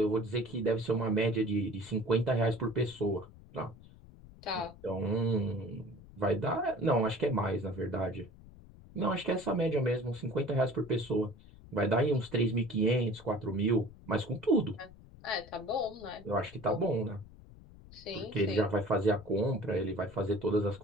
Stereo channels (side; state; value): left; noise; rumble, 20 dB below the sound